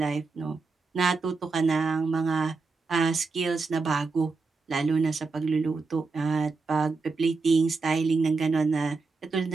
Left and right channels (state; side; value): quieter; left; 4.2 dB